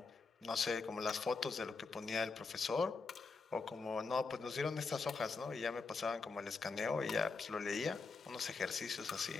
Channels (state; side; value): quieter; right; 4.4 dB